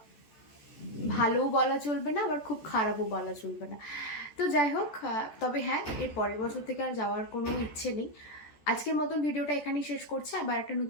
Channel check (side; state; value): right; late; 14 ms